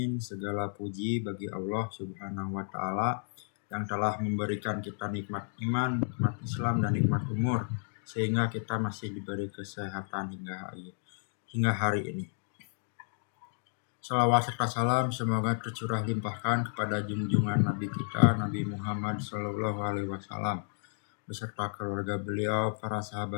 segala puji bagi Allah Subhanahu wa taala yang telah memberikan kita nikmat iman, nikmat Islam dan nikmat umur sehingga kita masih diberi kesehatan hingga hari ini. Salawat serta salam semoga tercurah limpahkan kepada junjungan Nabi kita Nabi Muhammad SAW beserta keluarga beliau, para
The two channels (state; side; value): silent; right; digital silence